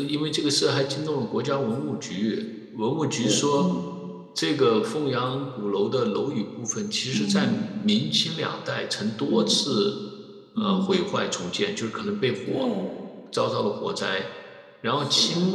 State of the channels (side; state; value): both; identical; correlation 1.00